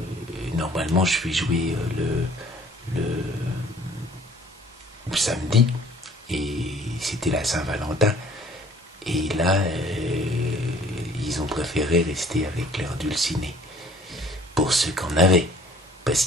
normalement je vais jouer le samedi et c'était la Saint-Valentin, et là ils ont préféré rester avec leur dulciné pour ceux qu'on avait, parce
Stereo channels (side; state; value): both; normal; correlation 0.54